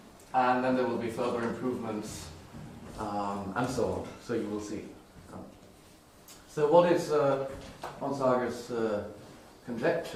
And then there will be further improvements and so on. So you will see. So what is Onsager's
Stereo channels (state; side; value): identical; both; correlation 1.00